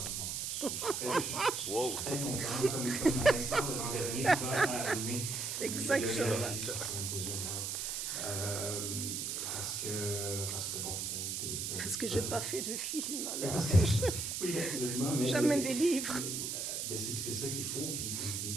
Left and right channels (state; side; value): noise; right; hiss, 2 dB below the sound